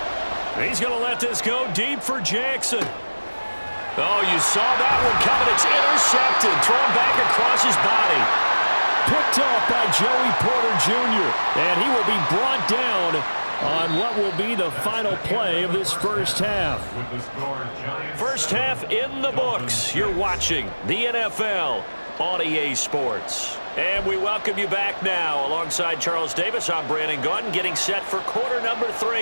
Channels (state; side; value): inverted; both; correlation -1.00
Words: He's going to let this go deep for Jackson. Oh, you saw that one coming. It's intercepted. Thrown back across his body. Picked off by Joey Porter Jr. And he will be brought down on what will be the final play of this first half. First half in the books. You're watching the NFL on EA Sports. And we welcome you back now. Alongside Charles Davis, I'm Brandon Gaudin, getting set for quarter number